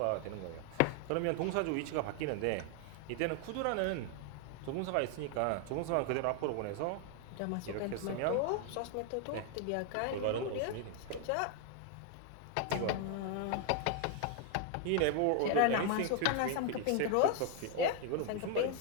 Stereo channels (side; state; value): both; different; correlation 0.00